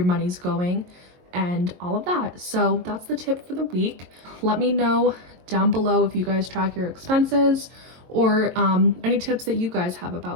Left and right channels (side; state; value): left; late; 22 ms